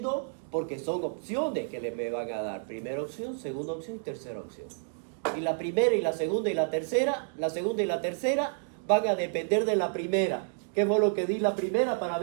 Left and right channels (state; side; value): silent; left; digital silence